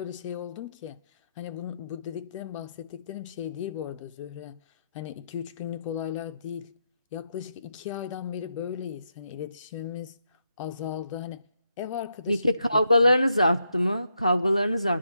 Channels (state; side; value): inverted; both; correlation -0.81